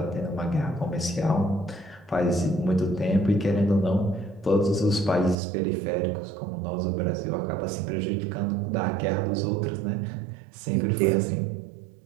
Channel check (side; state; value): left; drops out; at 5.4 s